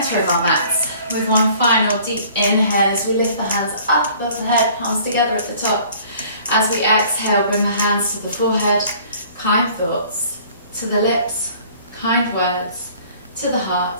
of our mats with one final deep inhale as we lift the hands up above the head, palms together at the top. As we exhale, bring the hands to the forehead, kind thoughts, to the lips, kind words, to the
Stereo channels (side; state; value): both; inverted; correlation -0.52